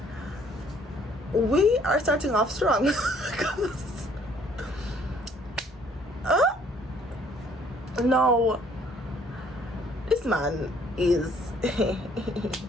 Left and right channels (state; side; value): normal; both; correlation 0.61